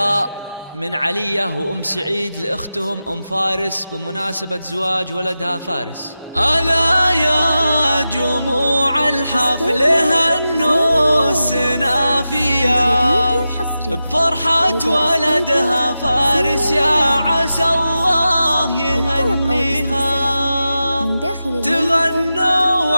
من علية وأم سعيد لأختهم أم فارس بمناسبة زواج ولدها فارس. ألا يا جموع الحفل هنوا السنافية بفرحة ولدها فارس، يا عسى الله يهنيها. تغنوا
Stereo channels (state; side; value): inverted; both; correlation -0.92